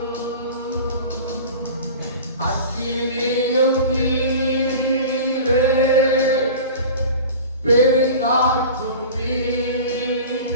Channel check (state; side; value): inverted; both; correlation -0.37